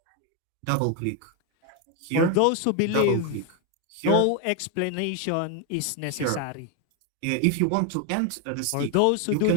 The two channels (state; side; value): different; both; correlation 0.01